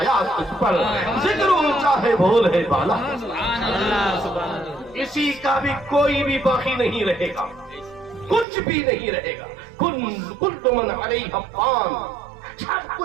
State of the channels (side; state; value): left; drops out; at 8.5 s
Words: تجھ پر، ذکر اونچا ہے بھول ہے بالا، اسی کا بھی کوئی بھی باقی نہیں رہے گا، کچھ بھی نہیں رہے گا، کل من علیہ فان، سب